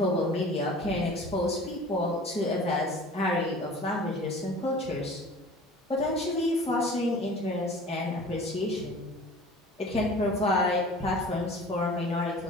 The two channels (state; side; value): normal; both; correlation 0.43